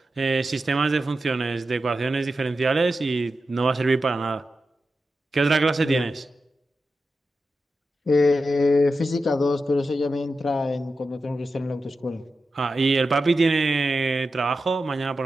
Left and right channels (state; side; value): normal; both; correlation 0.91